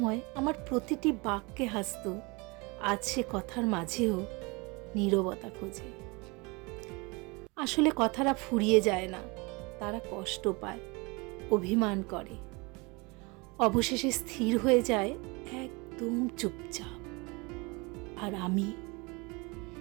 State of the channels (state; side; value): quieter; left; 27.4 dB